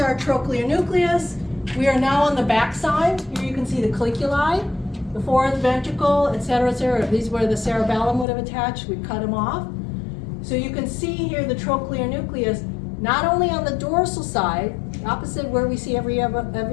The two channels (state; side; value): drops out; right; at 8.2 s